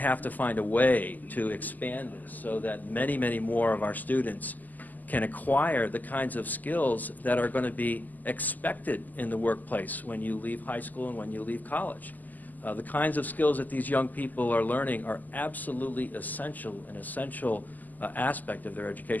to find a way to expand this so that many, many more of our students can acquire the kinds of skills that are going to be expected in the workplace when you leave high school and when you leave college. The kinds of skills that these young people are learning are absolutely essential, an essential aspect of their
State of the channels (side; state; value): right; late; 0.083 ms